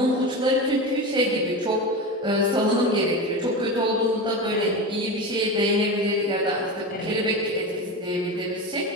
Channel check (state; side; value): normal; both; correlation 0.23